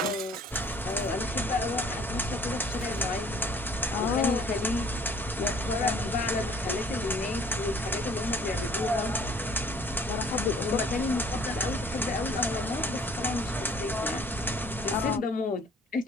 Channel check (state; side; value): normal; both; correlation 0.54